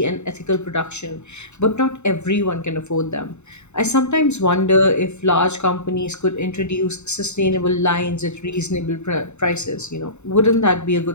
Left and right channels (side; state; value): right; late; 0.82 ms